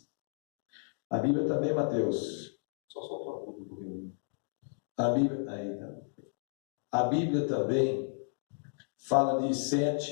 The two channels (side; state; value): right; silent; digital silence